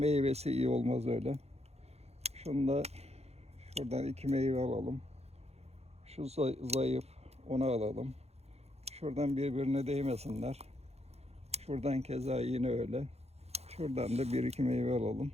iyi olmaz öyle. Şunu da şuradan 2 meyve alalım. Şu zayıf, onu alalım. Şuradan birbirine değmesinler. Şuradan keza yine öyle. Şuradan da bir iki meyve alalım.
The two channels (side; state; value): left; late; 0.31 ms